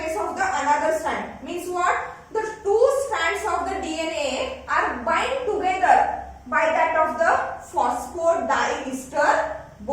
of the another strand means what? The two strands of the DNA are bind together by that of the phosphodiester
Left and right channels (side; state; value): both; identical; correlation 1.00